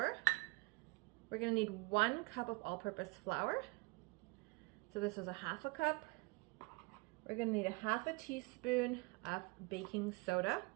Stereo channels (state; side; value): quieter; left; 26.3 dB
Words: We're gonna need 1 cup of all-purpose flour. So this is a half a cup. We're gonna need a half a teaspoon of baking soda.